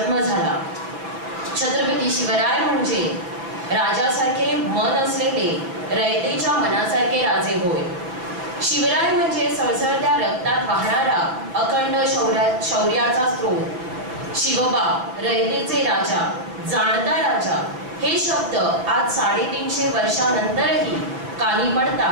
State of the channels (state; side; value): late; left; 5.8 ms